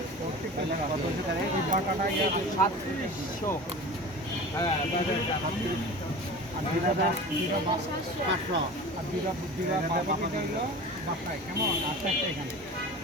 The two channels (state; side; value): normal; both; correlation 0.35